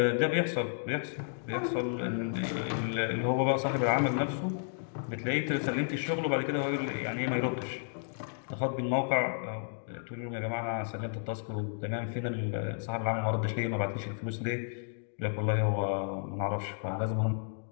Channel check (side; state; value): right; silent; digital silence